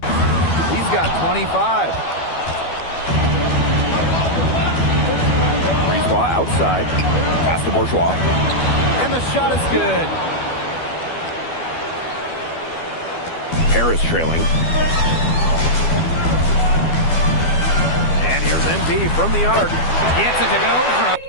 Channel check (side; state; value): right; late; 12 ms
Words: He's got 25. Brisebois outside. Pass to Bourgeois. And the shot is good. Paris trailing. And here's MP from the arc. Gets it to go from...